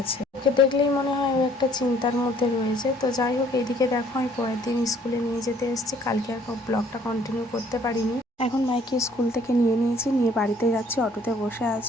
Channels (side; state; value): both; normal; correlation 0.59